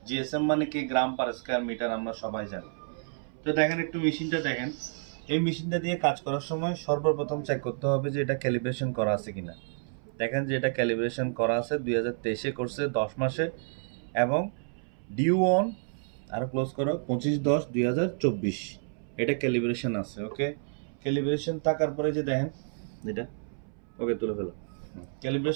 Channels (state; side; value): silent; left; 58 dB below the other